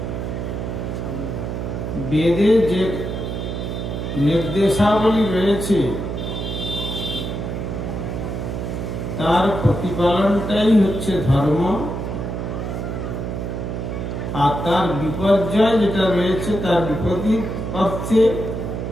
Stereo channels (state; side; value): noise; right; hum, 4 dB below the sound